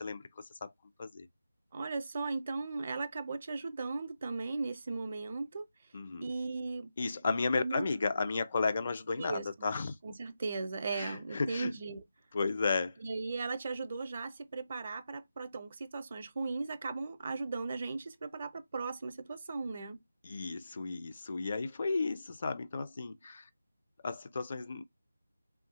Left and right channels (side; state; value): both; inverted; correlation -0.87